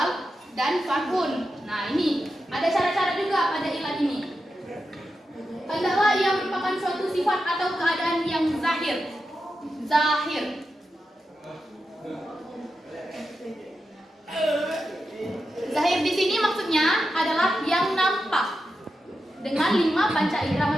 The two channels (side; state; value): both; normal; correlation 0.89